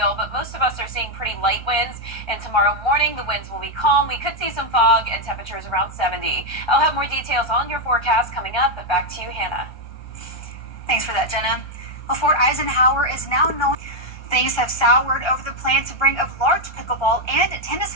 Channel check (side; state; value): right; late; 1.3 ms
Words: but most of us are seeing pretty light winds. And tomorrow morning, the winds will be calm. We could see some fog and temperatures around 70. I'll have more details on your forecast coming up, but back to you, Hannah. Thanks for that, Jenna. Well, Fort Eisenhower is now known. Things have soured over the plan to bring a large pickleball and